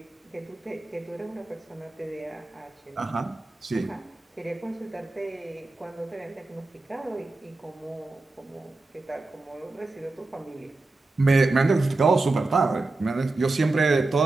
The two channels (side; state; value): left; quieter; 3.3 dB